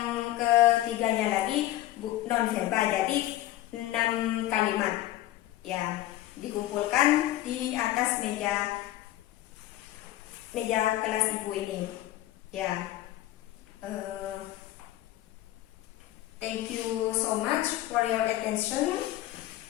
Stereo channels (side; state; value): right; quieter; 15.1 dB